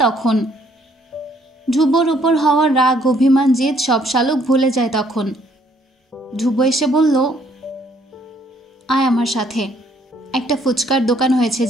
তখন। ধ্রুবর উপর হওয়ার রাগ, অভিমান, জেদ সব শালুক ভুলে যায় তখন। ধ্রুব এসে বলল, আয় আমার সাথে, একটা ফুচকার দোকান হয়েছে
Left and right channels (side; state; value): both; normal; correlation 0.66